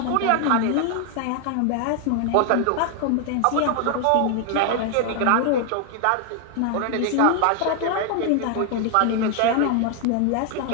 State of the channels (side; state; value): both; different; correlation 0.00